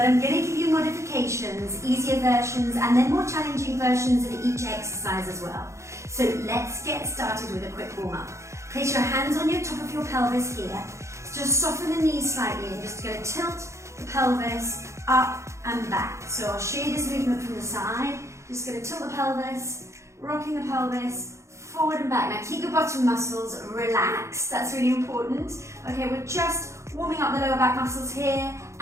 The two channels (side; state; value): left; late; 0.14 ms